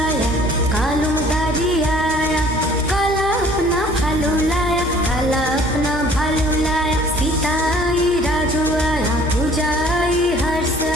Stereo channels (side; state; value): both; normal; correlation 0.54